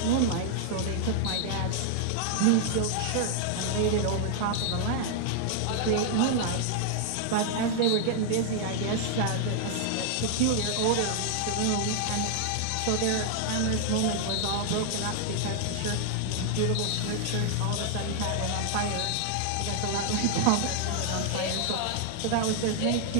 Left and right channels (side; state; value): both; different; correlation 0.00